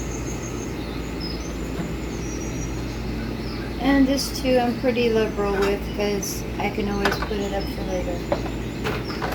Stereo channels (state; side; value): identical; both; correlation 1.00